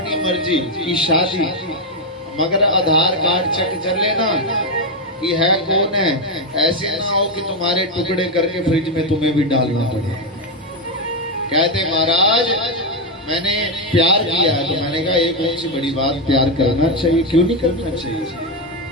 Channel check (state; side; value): normal; both; correlation 0.05